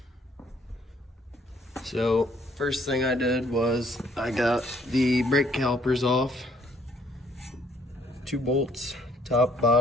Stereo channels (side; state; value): both; normal; correlation 0.65